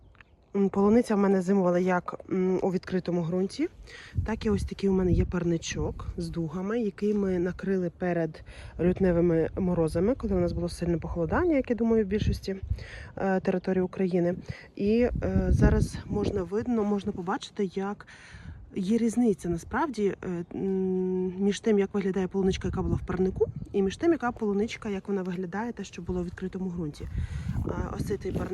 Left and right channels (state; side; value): identical; both; correlation 1.00